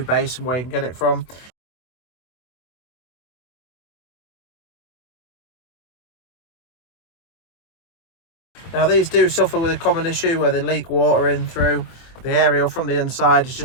base and where you can get it from. Now these do suffer with a common issue where they leak water in through. The aerial from the inside is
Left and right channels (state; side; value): late; right; 24 ms